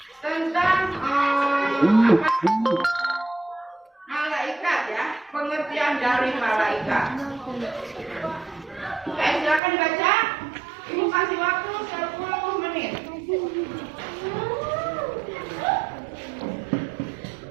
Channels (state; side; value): drops out; left; at 9.6 s